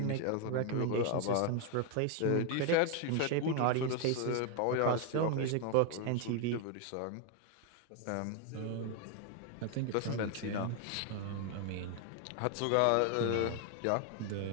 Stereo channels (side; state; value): both; different; correlation 0.01